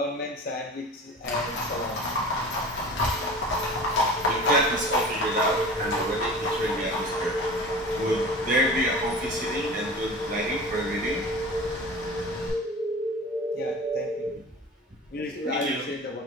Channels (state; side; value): normal; both; correlation 0.38